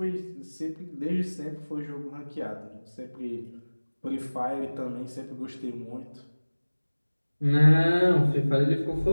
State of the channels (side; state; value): both; inverted; correlation -1.00